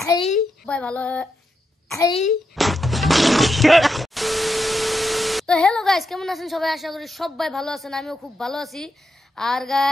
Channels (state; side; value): normal; both; correlation 0.85